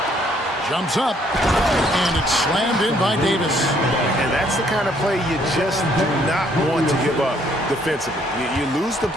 Jumps up, and it's slammed in by Davis. And that's the kind of play you just do not want to give up defensively. You lose the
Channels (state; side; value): normal; both; correlation 0.66